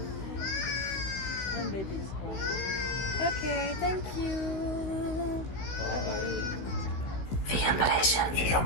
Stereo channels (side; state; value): right; late; 16 ms